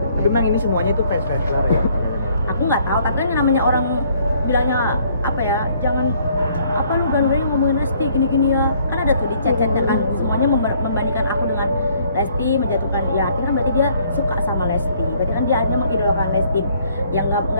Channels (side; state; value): both; inverted; correlation -0.63